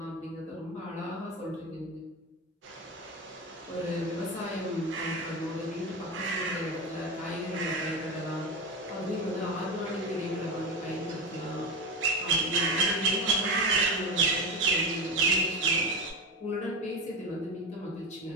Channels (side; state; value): both; normal; correlation 0.21